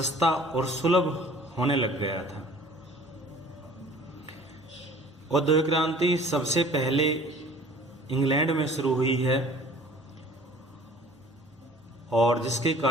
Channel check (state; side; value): normal; both; correlation 0.49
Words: और सुलभ होने लग गया था। औद्योगिक क्रांति सबसे पहले इंग्लैंड में शुरू हुई है और जिसके